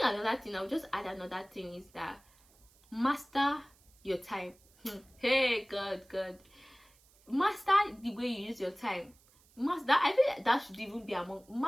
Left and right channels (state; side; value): noise; right; hiss, 30 dB below the sound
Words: another thing, I'll just add another thing, is that master your time. Hey, God, master the way you use your time. Master, I feel like that should even be among,